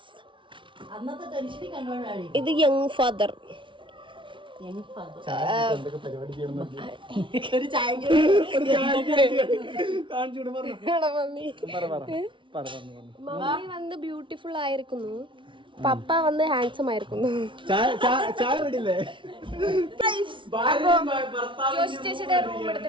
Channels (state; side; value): late; left; 0.24 ms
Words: അന്നത്തെ ടെൻഷനിൽ കണ്ടോണ്ടാണ് ഇത് യങ് ഫാദർ. ഒരു ചായ മമ്മി വന്ന് ബ്യൂട്ടിഫുൾ ആയിരിക്കുന്നു, പപ്പ വന്ന് ഹാൻസം ആയിരിക്കുന്നു. ചേച്ചിയുടെ റൂം